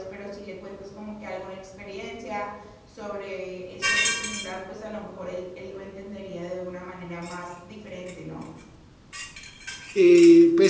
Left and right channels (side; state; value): both; identical; correlation 1.00